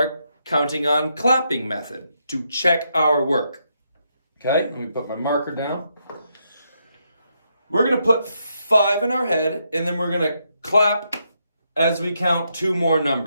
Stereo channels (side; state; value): both; inverted; correlation -0.79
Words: counting on clapping method to check our work. Okay, let me put my marker down. We're going to put 5 in our head, and then we're going to clap as we count 2 more